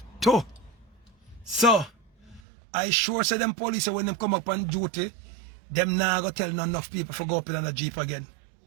too. So, I sure say them police when them come up on duty, them now go tell none enough people to go up in the jeep again.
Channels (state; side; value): drops out; left; at 2.4 s